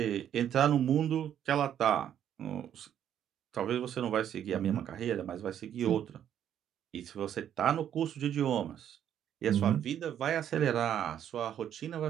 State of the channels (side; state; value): left; quieter; 9.9 dB